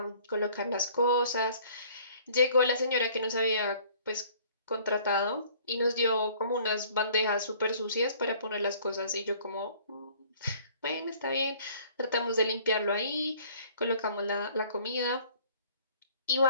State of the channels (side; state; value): both; inverted; correlation -0.55